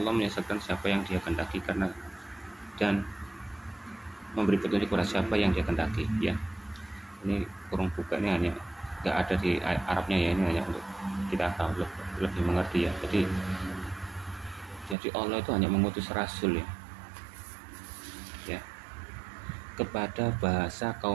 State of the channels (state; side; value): drops out; left; at 15.0 s